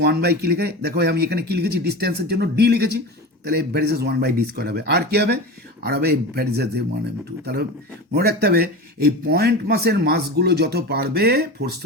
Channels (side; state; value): both; normal; correlation 0.29